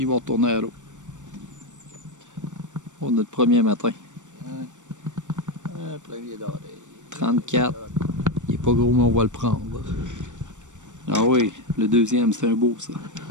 vont retourner à l'eau. Pour notre premier matin. Un premier d'oreille. 34. Il est pas gros, mais on va le prendre. Ah oui, le deuxième, c'est un beau, ça.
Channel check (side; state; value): left; late; 0.85 ms